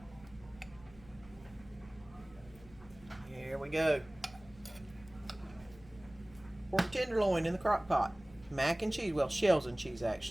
Here we go. Pork tenderloin in the crock pot. Mac and cheese, well, shells and cheese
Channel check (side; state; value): left; noise; hum, 22 dB below the sound